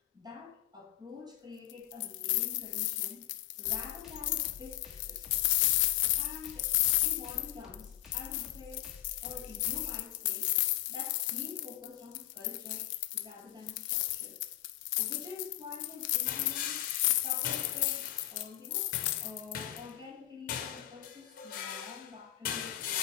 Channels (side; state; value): right; quieter; 14.3 dB